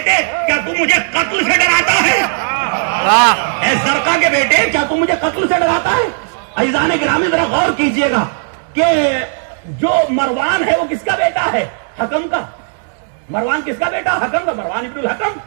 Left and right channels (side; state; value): left; silent; 70 dB below the other